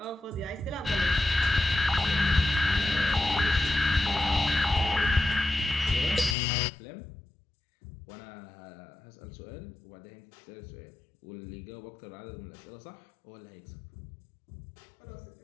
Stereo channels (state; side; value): drops out; right; at 6.4 s